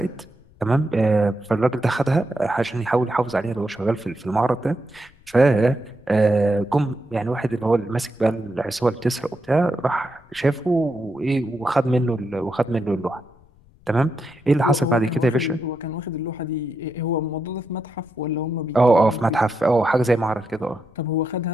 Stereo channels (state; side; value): noise; left; rumble, 28 dB below the sound